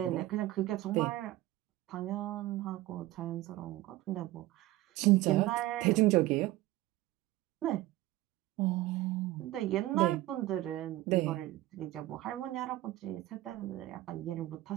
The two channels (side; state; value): left; quieter; 16.8 dB